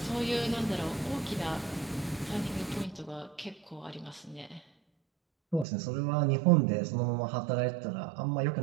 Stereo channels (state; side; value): drops out; left; at 5.7 s